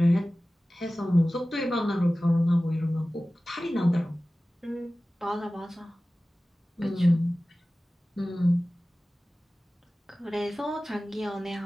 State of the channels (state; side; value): normal; both; correlation 0.97